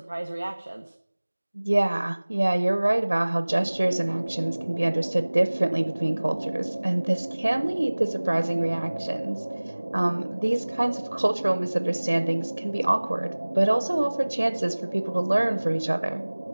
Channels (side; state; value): both; inverted; correlation -1.00